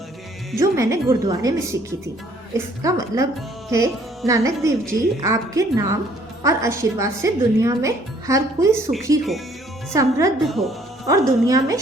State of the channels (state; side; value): normal; both; correlation 0.61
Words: जो मैंने गुरुद्वारे में सीखी थी। इसका मतलब है, नानक देव जी आपके नाम और आशीर्वाद से दुनिया में हर कोई सुखी हो, समृद्ध हो और दुनिया में